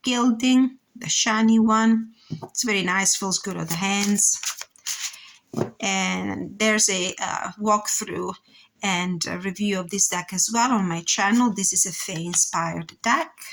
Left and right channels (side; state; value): both; identical; correlation 1.00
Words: gilding, the shiny one. It's very nice, feels good on the hands. And there's a walkthrough and a review of this deck as well on my channel. This is a Fae inspired deck.